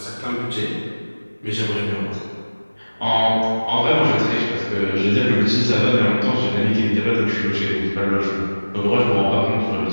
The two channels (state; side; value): inverted; both; correlation -1.00